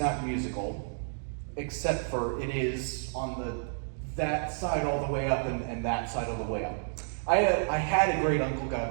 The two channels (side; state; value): left; silent; digital silence